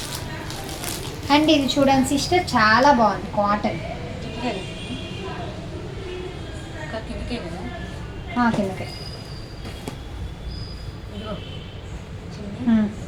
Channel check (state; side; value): identical; both; correlation 1.00